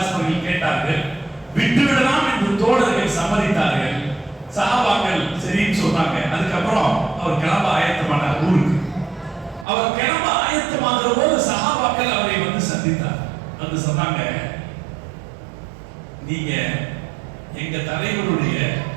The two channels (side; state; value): left; drops out; at 9.7 s